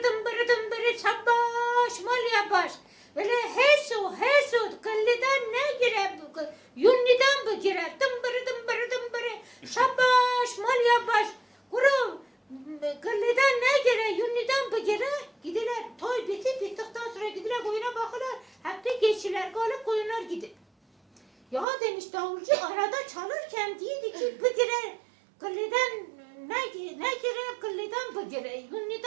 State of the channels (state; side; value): drops out; left; at 21.7 s